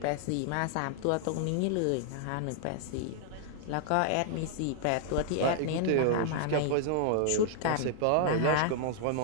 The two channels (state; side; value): different; both; correlation -0.01